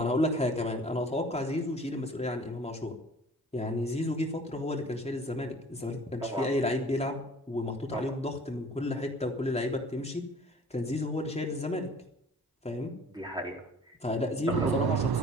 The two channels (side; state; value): both; normal; correlation 0.49